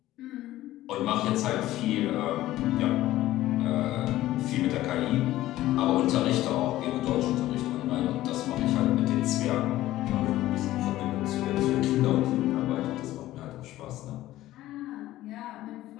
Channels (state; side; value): quieter; right; 15.2 dB